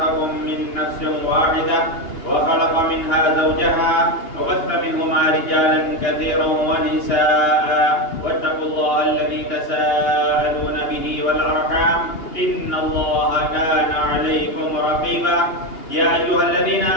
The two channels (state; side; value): late; right; 2.8 ms